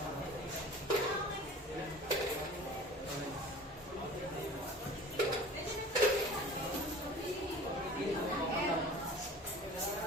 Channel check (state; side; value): normal; both; correlation 0.42